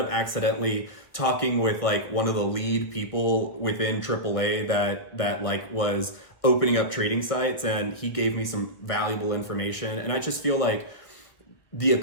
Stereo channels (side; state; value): right; late; 1.4 ms